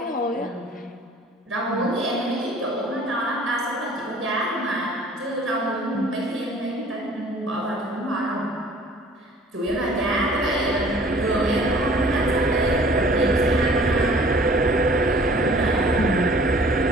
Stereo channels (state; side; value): normal; both; correlation 0.51